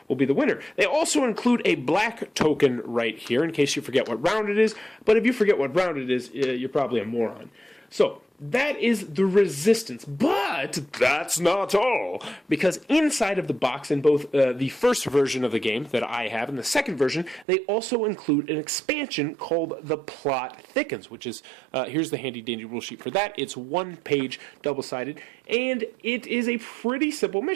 will be the winner. They also include a black token right here in case you forget what round it is, but if you forget what round it is, you're probably a moron. So, that is the Resistance, but that's not all, because inside of the box in both the first version of the game that I have and the second version, they also include an expansion called The Plot Thickens, which is, here's the handy dandy rule sheet for that. It's 1 page, double-sided, and it is a pretty simple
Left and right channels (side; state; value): left; drops out; at 17.4 s